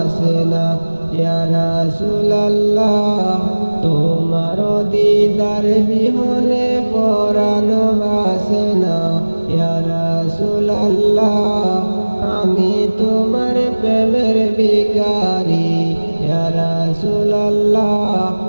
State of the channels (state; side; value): inverted; both; correlation -1.00